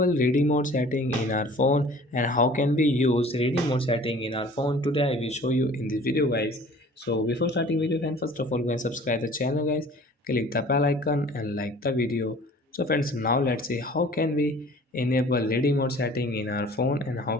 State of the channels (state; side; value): normal; both; correlation 0.48